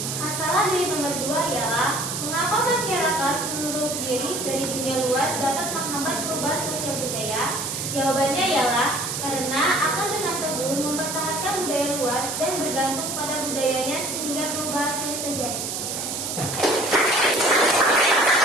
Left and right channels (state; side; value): noise; right; hiss, 4 dB below the sound